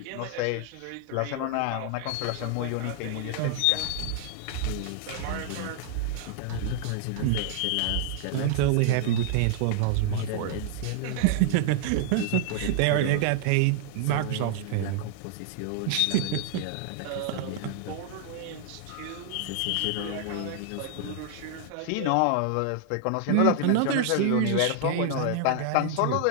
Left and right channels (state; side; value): different; both; correlation -0.01